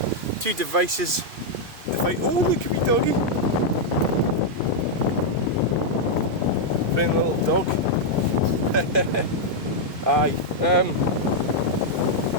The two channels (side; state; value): left; late; 2.5 ms